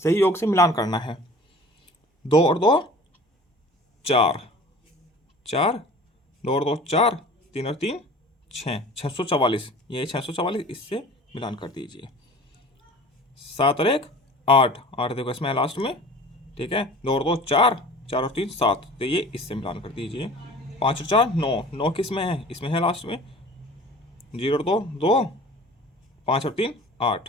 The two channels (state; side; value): normal; both; correlation 0.43